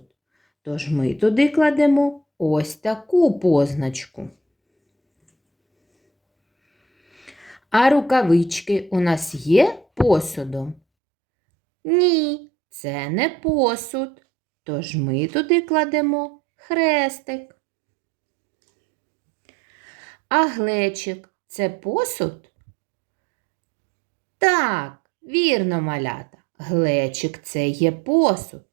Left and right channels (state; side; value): drops out; left; at 10.8 s